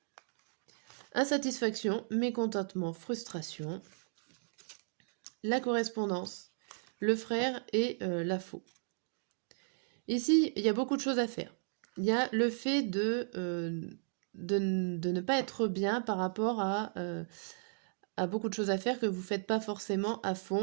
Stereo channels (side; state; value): left; silent; digital silence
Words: Insatisfaction, mécontentement, frustration. La correspondance, le frère et la faux. Ici, il y a beaucoup de choses à faire. Il y a le fait de ne pas être bien par rapport à beaucoup de choses à faire que vous ne faites pas forcément à